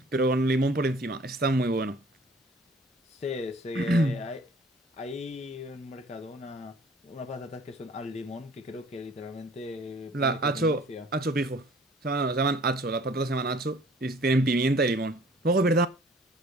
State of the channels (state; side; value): normal; both; correlation 0.53